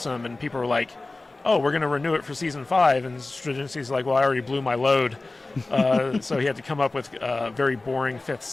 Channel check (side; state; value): right; quieter; 3.2 dB